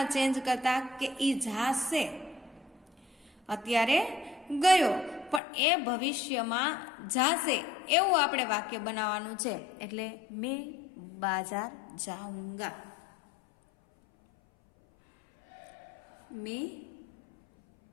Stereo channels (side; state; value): right; drops out; at 5.4 s